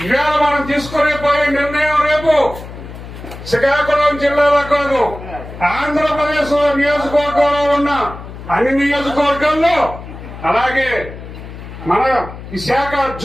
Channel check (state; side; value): noise; left; hum, 13 dB below the sound